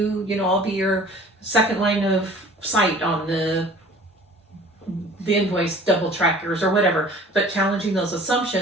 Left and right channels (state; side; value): normal; both; correlation 0.48